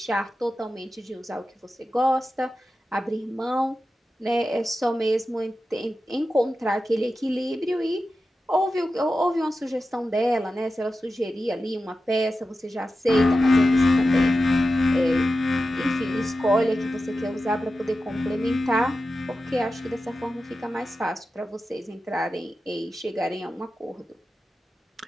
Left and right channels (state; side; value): normal; both; correlation 0.92